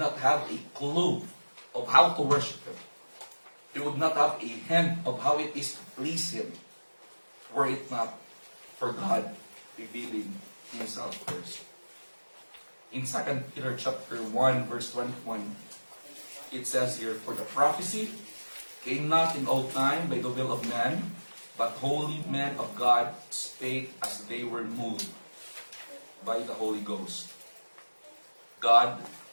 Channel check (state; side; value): inverted; both; correlation -1.00